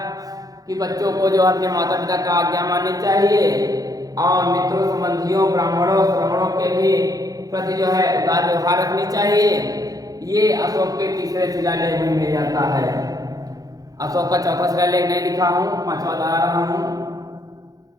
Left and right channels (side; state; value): left; late; 0.18 ms